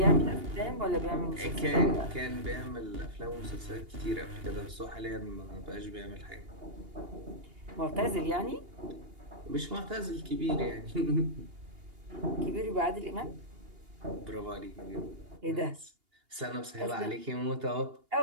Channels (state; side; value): late; left; 2.8 ms